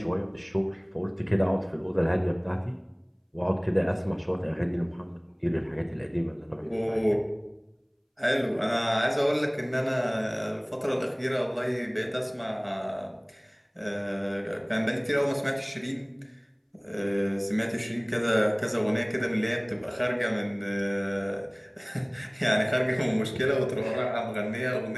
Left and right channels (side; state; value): both; identical; correlation 1.00